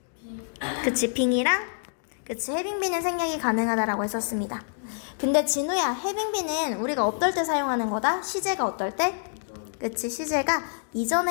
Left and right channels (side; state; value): right; silent; digital silence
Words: 그치, 빙이랑 그치, 해빙비는 생략이 가능하다라고 했었습니다. 근데 진우야, 해빙비는 우리가 어떨 때 사용하는 거다? 시제가 어떨 때? 그치, 시제가